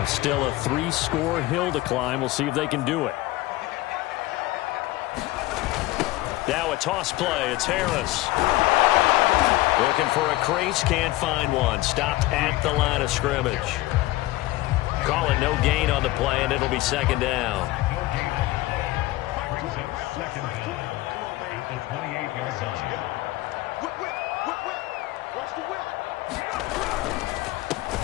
still a 3-score hill to climb. We'll see if they can do it. Now a toss play. It's Harris. Looking for a crease. Can't find one. Stopped at the line of scrimmage. Call it no gain on the play, and it'll be 2nd down.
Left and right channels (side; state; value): right; quieter; 18.3 dB